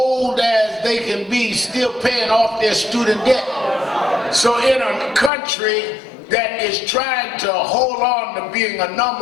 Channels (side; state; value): right; drops out; at 5.3 s